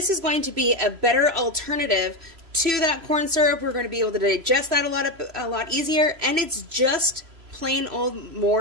is going to be a better alternative to that corn syrup. We're going to be able to digest that a lot easier, and it's just plain old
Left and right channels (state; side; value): late; left; 3.0 ms